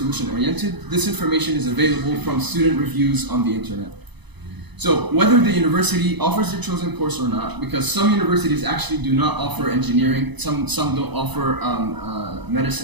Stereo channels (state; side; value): late; left; 0.99 ms